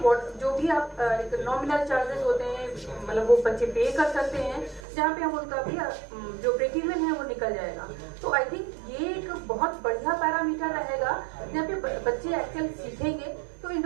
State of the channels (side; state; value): left; drops out; at 4.8 s